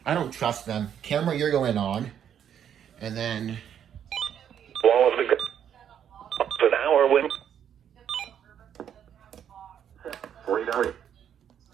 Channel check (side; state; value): left; quieter; 9.1 dB